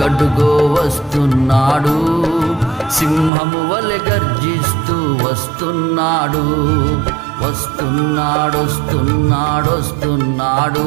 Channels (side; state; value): left; drops out; at 3.3 s